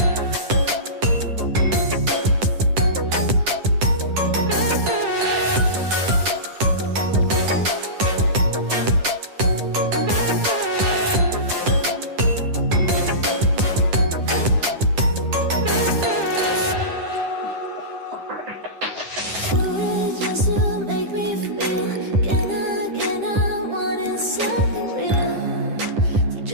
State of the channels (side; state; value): left; late; 10 ms